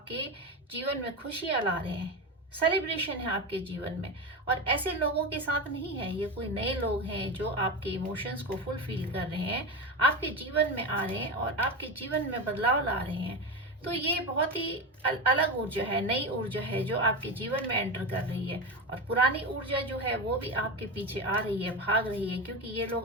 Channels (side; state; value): both; normal; correlation 0.19